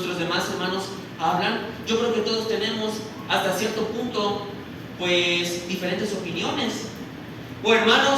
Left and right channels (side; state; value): both; identical; correlation 1.00